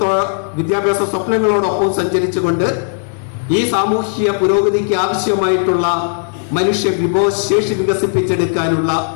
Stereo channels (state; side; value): silent; right; 69 dB below the other